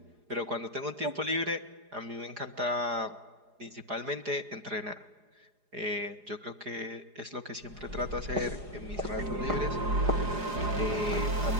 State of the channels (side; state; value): left; late; 4.9 ms